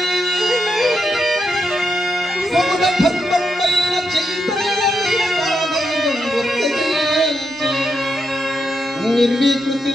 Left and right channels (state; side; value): normal; both; correlation 0.83